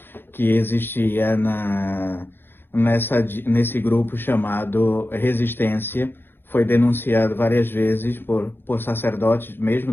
que existia nesse grupo chamado Resistência. Foi denunciado várias vezes por sacerdotes mesmo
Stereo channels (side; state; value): right; late; 0.10 ms